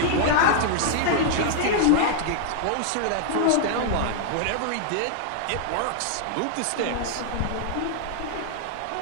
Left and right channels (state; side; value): different; both; correlation -0.01